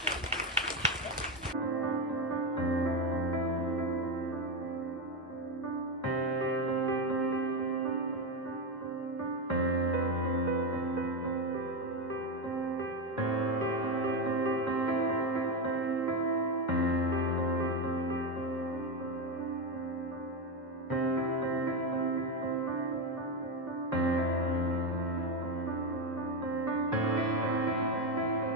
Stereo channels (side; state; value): both; normal; correlation 0.11